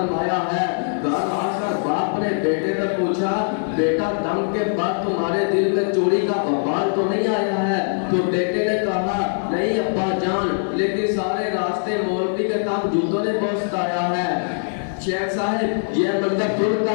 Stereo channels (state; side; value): silent; right; digital silence